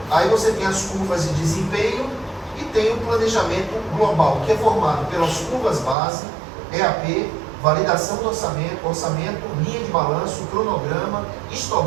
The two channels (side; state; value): left; drops out; at 6.0 s